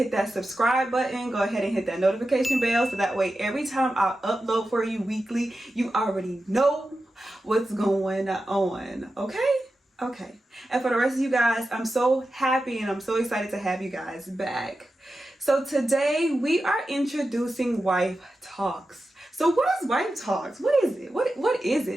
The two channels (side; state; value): both; normal; correlation 0.92